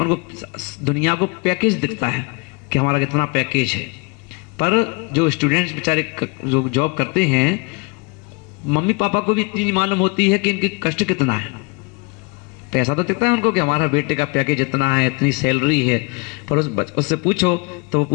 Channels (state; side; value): quieter; right; 29.3 dB